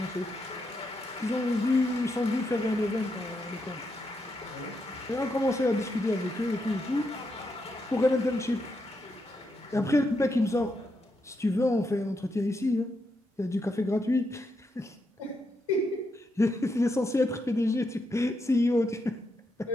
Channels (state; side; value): normal; both; correlation 0.82